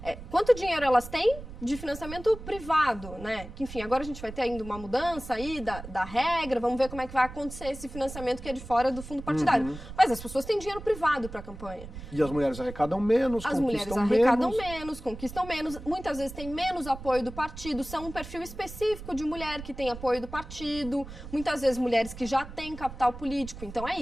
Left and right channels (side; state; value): right; noise; rumble, 13 dB below the sound